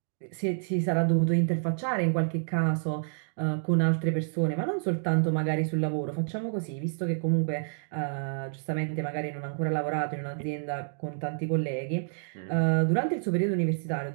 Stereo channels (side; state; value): left; silent; digital silence